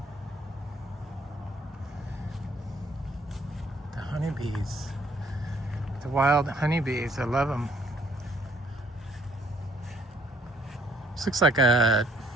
The honeybees. The wild honeybees. I love them. This looks like a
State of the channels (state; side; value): normal; both; correlation 0.64